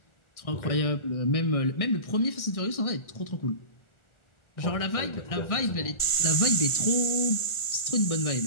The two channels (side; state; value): right; late; 1.4 ms